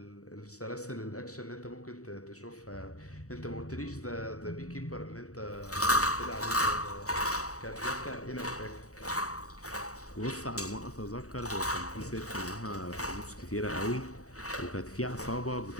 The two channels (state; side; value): late; right; 0.65 ms